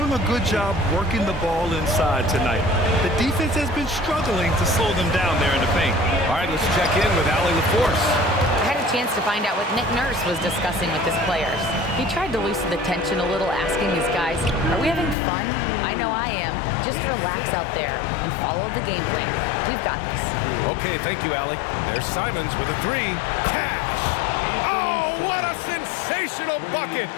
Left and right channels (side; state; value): right; drops out; at 15.2 s